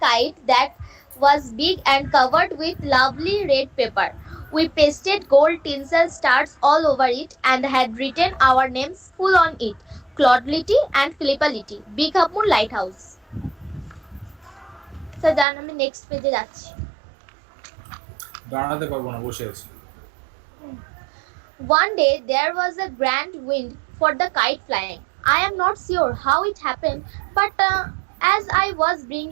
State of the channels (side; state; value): left; drops out; at 15.5 s